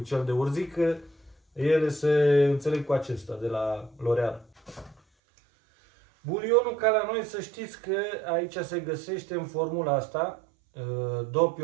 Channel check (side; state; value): left; drops out; at 5.0 s